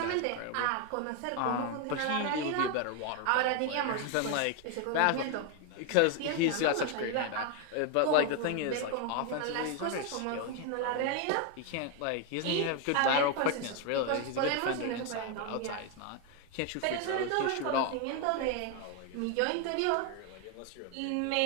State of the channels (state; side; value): different; both; correlation 0.01